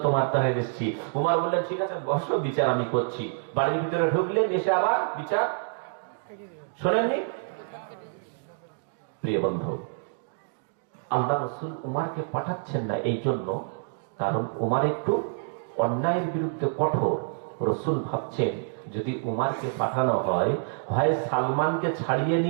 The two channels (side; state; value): left; silent; digital silence